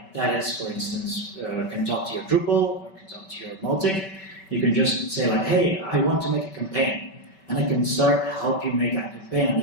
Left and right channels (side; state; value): right; late; 5.2 ms